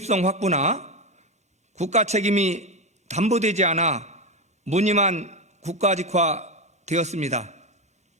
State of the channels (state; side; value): normal; both; correlation 0.13